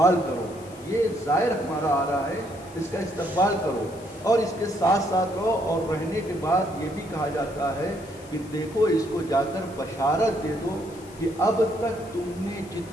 کرو. یہ زائر ہمارا آ رہا ہے، اس کا استقبال کرو اور اس کے ساتھ ساتھ رہو. اور رہنے کے بعد یہ بھی کہا جاتا ہے کہ دیکھو اس کو جا کر بشارت دے دو کہ اب تک تم نے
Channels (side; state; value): left; noise; hiss, 23 dB below the sound